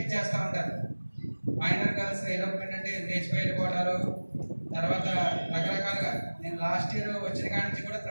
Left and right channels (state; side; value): inverted; both; correlation -1.00